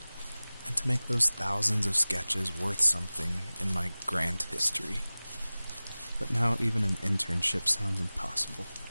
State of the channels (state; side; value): inverted; both; correlation -0.98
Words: and to make those thousands of sketches worth something in my grand history. But now even an internship sounds impossible.